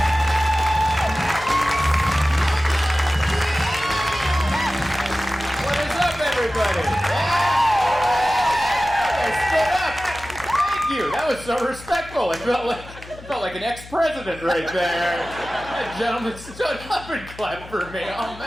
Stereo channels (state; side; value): noise; left; hum, 17 dB below the sound